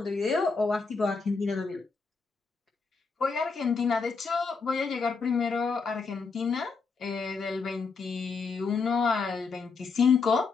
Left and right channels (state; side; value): quieter; right; 4.8 dB